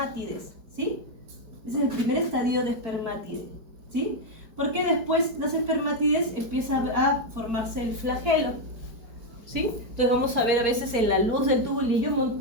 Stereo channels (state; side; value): late; left; 4.7 ms